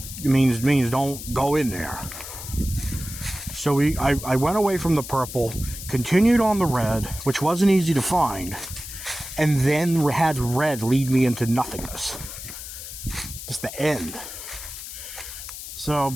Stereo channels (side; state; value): left; noise; hiss, 10 dB below the sound